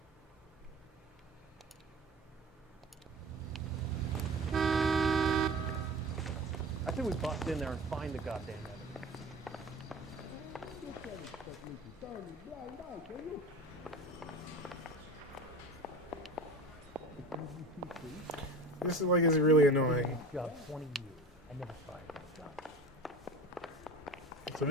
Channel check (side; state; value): both; normal; correlation 0.35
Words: I think we bust in there and find the goddamn evidence. This is like is really annoying. Job 20 years. I never fired a job. So